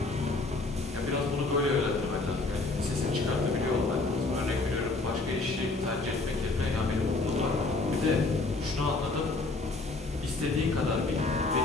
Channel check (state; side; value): quieter; right; 3.3 dB